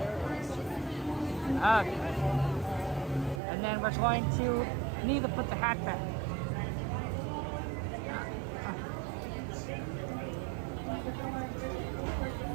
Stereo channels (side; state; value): left; drops out; at 3.4 s